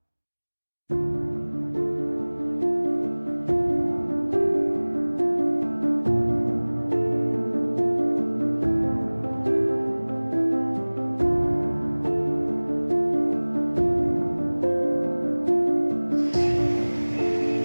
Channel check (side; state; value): both; inverted; correlation -1.00